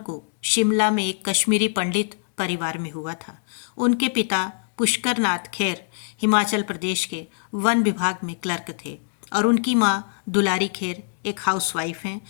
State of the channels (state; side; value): silent; right; digital silence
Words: को शिमला में एक कश्मीरी पंडित परिवार में हुआ था। उनके पिता पुष्कर नाथ खेर हिमाचल प्रदेश के वन विभाग में क्लर्क थे और उनकी मां दुलारी खेर एक हाउसवाइफ हैं।